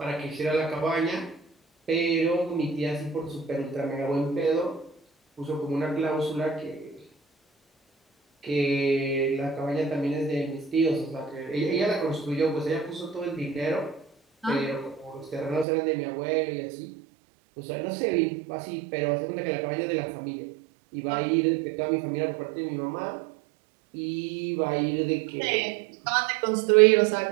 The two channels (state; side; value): drops out; left; at 15.7 s